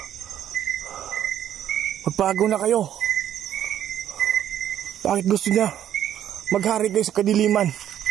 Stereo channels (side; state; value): left; quieter; 10.8 dB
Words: Magbago na kayo. Bakit gusto niya maghari kayo sa kadiliman?